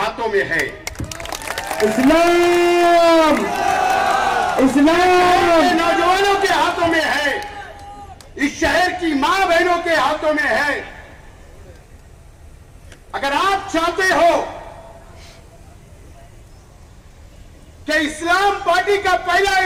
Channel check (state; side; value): identical; both; correlation 1.00